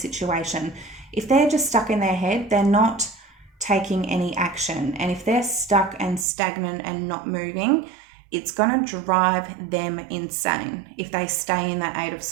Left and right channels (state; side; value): drops out; left; at 6.2 s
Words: If they're just stuck in their head, they're not taking any action. And if they're stuck and stagnant and not moving, it's going to drive them insane if they stay in that 8 of